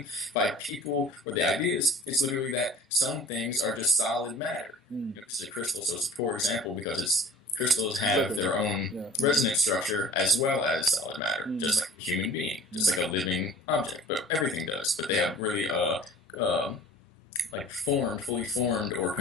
by people or the ideas, it's literally that some things are just solid matter. This is a crystal, so it's a poor example because crystals have their own resonance structure as well as solid matter, just like a human being, just like a living object, but everything does. But they have really fully formed or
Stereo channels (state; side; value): normal; both; correlation 0.46